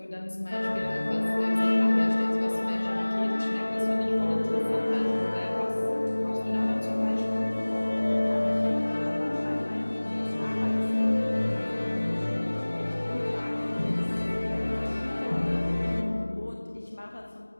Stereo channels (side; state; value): both; inverted; correlation -1.00